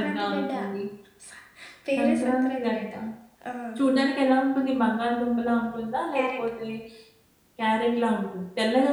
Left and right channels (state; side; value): identical; both; correlation 1.00